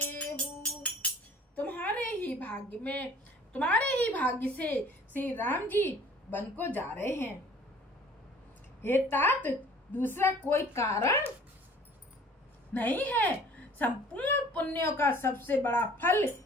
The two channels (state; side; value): normal; both; correlation 0.51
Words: तुम्हारे ही भाग्य से श्री राम जी वन को जा रहे हैं। हे तात, दूसरा कोई कारण नहीं है। संपूर्ण पुण्यों का सबसे बड़ा फल